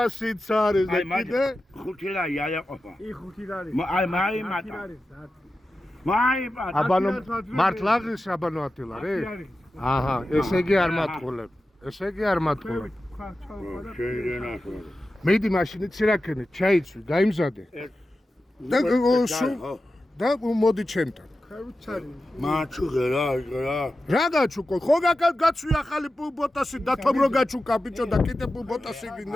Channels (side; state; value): both; normal; correlation 0.93